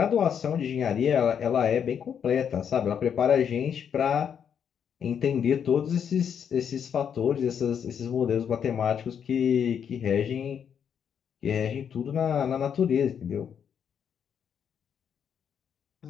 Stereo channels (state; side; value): quieter; right; 8.0 dB